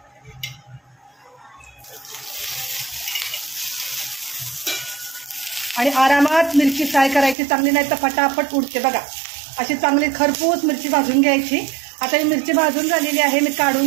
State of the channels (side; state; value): left; drops out; at 7.4 s